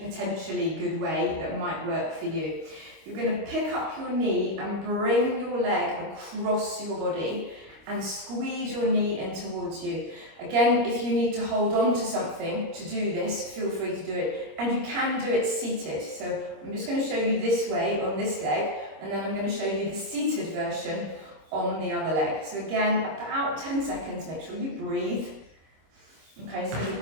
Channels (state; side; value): late; left; 25 ms